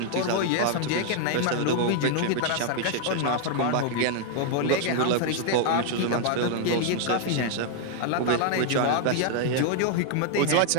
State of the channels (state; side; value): different; both; correlation -0.01